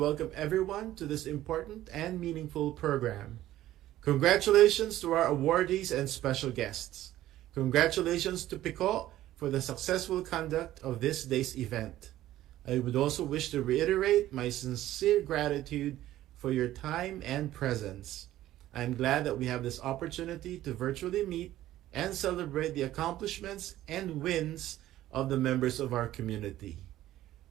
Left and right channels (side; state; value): left; quieter; 14.1 dB